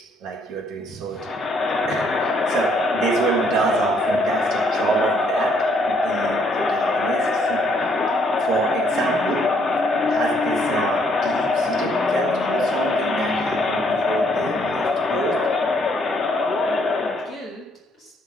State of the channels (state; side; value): normal; both; correlation 0.68